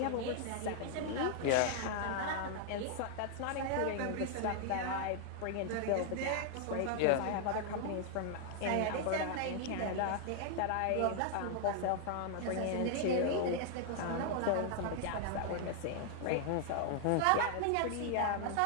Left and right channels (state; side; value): different; both; correlation 0.00